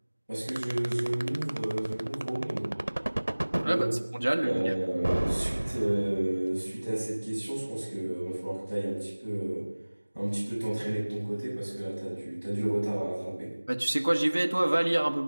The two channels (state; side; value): inverted; both; correlation -1.00